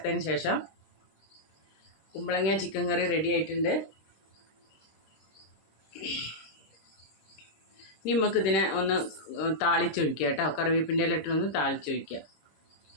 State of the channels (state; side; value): late; right; 26 ms